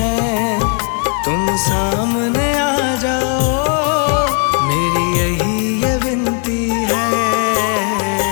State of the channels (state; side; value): quieter; right; 39.9 dB